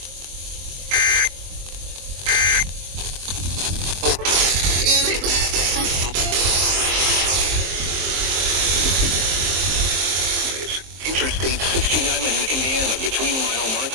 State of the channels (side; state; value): left; late; 23 ms